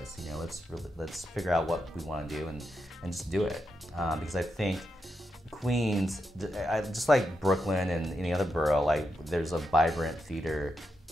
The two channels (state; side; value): normal; both; correlation 0.85